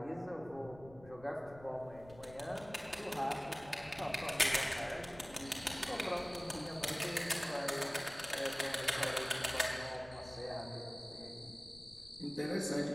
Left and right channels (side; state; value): left; noise; rumble, 19 dB below the sound